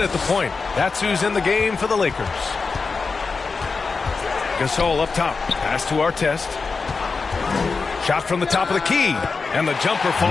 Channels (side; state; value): right; quieter; 4.6 dB